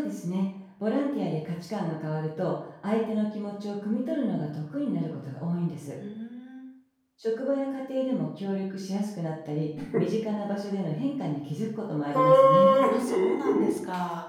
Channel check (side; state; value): both; identical; correlation 1.00